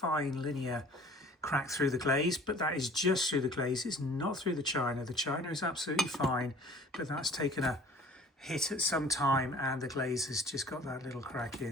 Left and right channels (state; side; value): normal; both; correlation 0.49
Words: linear crack through the glaze, but that is just through the glaze. It's not through the china. The china is absolutely fine, but that's taken a hit at some time and the glaze has just got that little crack